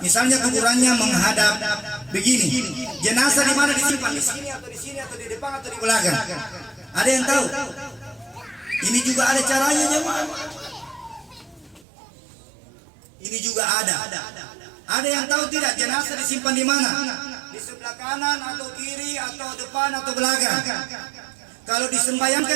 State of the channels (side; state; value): left; drops out; at 11.9 s